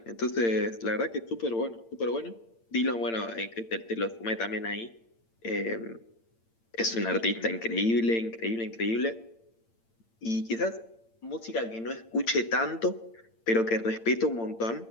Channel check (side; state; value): right; late; 8.8 ms